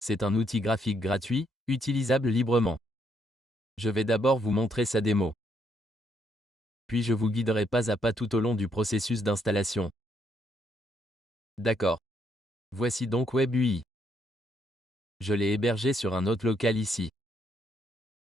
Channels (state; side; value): normal; both; correlation 0.73